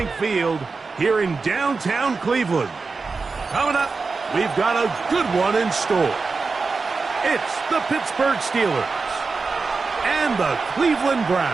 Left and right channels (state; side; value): quieter; left; 4.4 dB